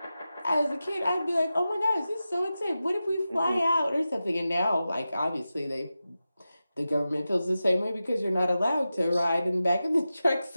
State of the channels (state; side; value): inverted; both; correlation -0.93